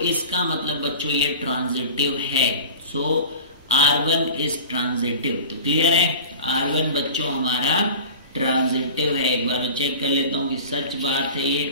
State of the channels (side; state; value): both; inverted; correlation -0.37